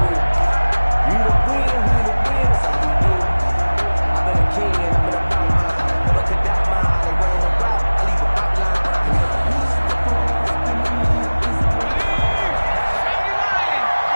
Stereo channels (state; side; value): inverted; both; correlation -1.00